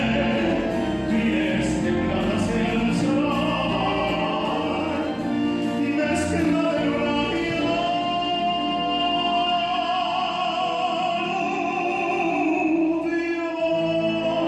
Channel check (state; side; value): identical; both; correlation 1.00